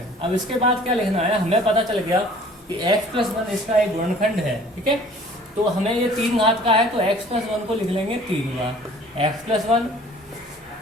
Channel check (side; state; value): both; normal; correlation 0.51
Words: अब इसके बाद क्या लिखना है, हमें पता चल गया कि x + 1 इसका एक गुणनखंड है, ठीक है। तो हमें ये 3 घात का है तो x + 1 को लिख लेंगे 3 बार, x + 1,